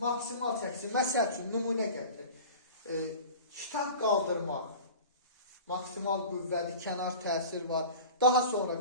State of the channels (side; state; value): both; inverted; correlation -0.39